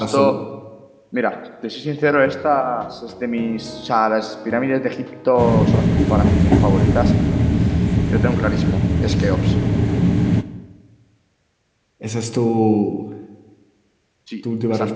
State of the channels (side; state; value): both; identical; correlation 1.00